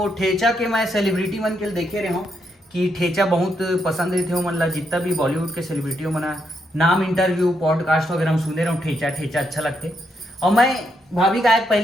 ठेचा के मैं सेलिब्रिटी मन के देखे रहे हूँ कि ठेचा बहुत पसंद रहते हो मन ला। जितना भी बॉलीवुड के सेलिब्रिटी मना नाम इंटरव्यू पॉडकास्ट वगैरह हम सुने रहे ठेचा ठेचा अच्छा लगते। और मैं भाभी का एक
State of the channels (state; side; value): normal; both; correlation 0.79